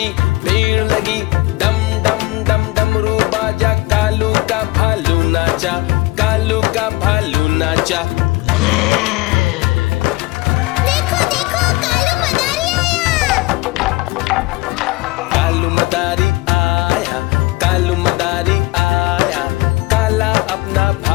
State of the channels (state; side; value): quieter; right; 21.4 dB